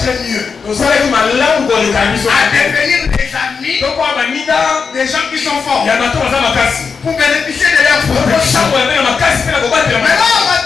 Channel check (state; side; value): quieter; right; 5.5 dB